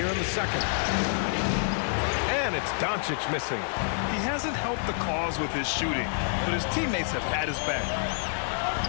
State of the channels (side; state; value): right; silent; 59 dB below the other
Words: in the second. And it's Doncic missing. He hasn't helped the cause with his shooting, but his teammates have had his back.